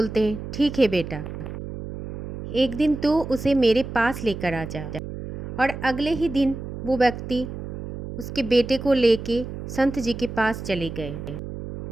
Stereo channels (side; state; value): right; noise; hum, 8 dB below the sound